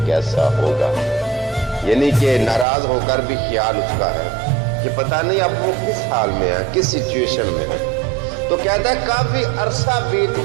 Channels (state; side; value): drops out; left; at 2.7 s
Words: कैसा होगा। यानी कि नाराज होकर भी ख्याल उसका है कि पता नहीं अब वो किस हाल में है, किस सिचुएशन में है। तो कहता है काफी अरसा बीत